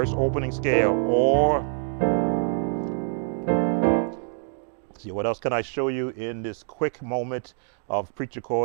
opening scale, or see, what else can I show you in this quick moment of preacher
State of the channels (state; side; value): silent; left; 59 dB below the other